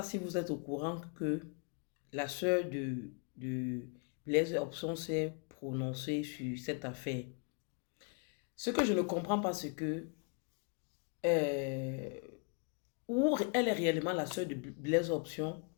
si vous êtes au courant que la sœur de Blaise Opson s'est prononcée sur cette affaire. Ce que je ne comprends pas, c'est que euh, où elle est réellement la sœur de Blaise Option,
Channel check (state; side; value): quieter; right; 37.9 dB